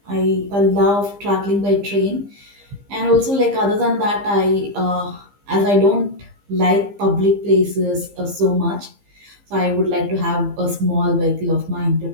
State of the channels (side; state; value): left; late; 15 ms